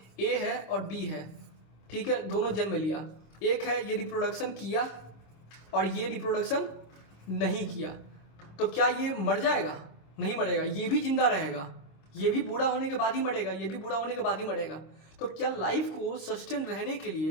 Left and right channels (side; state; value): right; late; 26 ms